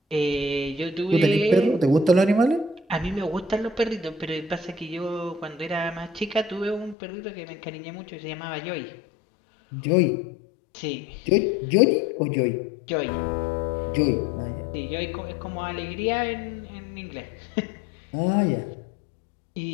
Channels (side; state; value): right; drops out; at 7.0 s